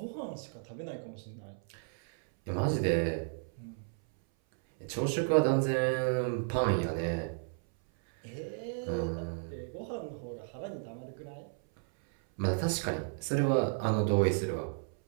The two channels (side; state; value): left; silent; 56 dB below the other